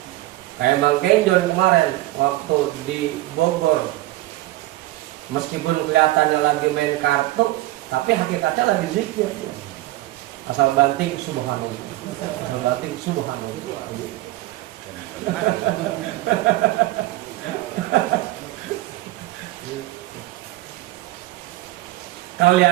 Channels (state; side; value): quieter; left; 17.2 dB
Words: Kayak Bang Kenjon kemarin waktu di Bogor, meskipun kelihatannya lagi main kartu, tapi hakikatnya lagi zikir. Asal banting subhanallah, asal banting subhanallah.